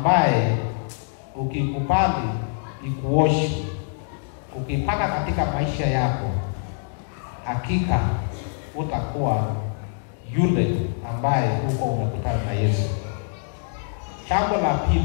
ukikubali ikuoshe, ukipaka katika maisha yako, hakika utakuwa yule ambaye uko umekutana na Yesu. Jambo la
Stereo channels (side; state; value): right; silent; digital silence